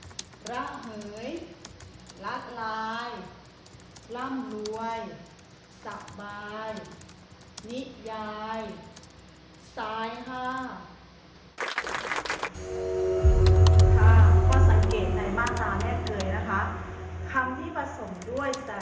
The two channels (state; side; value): identical; both; correlation 1.00